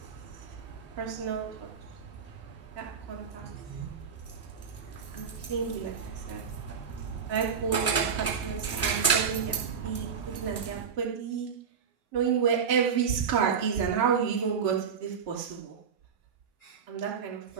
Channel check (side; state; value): left; quieter; 6.7 dB